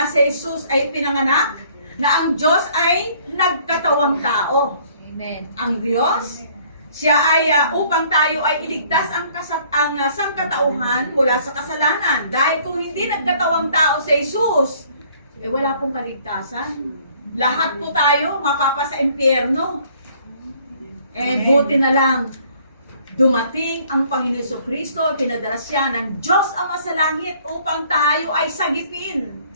si Jesus ay pinanganak, na ang Diyos ay nagkatawang tao. Amen. Ang Diyos, siya ay upang tayo ay iligtas ang sangkatauhan mula sa kasalanan. Dahil kung hindi nagkatawang tao si Jesus, wala pong kaligtasan. Lahat po tayo mapapa sa impyerno. Buti na lang, dumating ang Panginoon Jesucristo, pinadala siya ng Diyos Ama sa langit upang tayo ay sagipin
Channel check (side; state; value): both; inverted; correlation -0.59